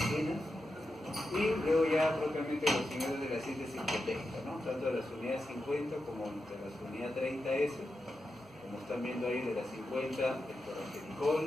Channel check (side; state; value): both; normal; correlation 0.89